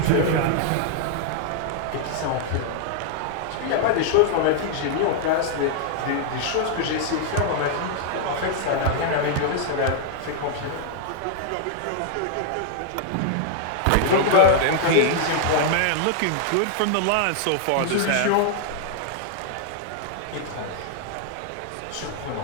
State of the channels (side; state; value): both; different; correlation -0.01